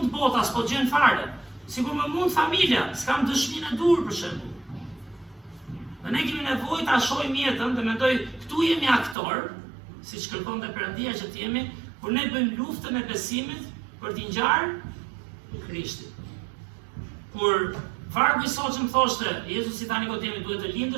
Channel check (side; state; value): left; drops out; at 9.2 s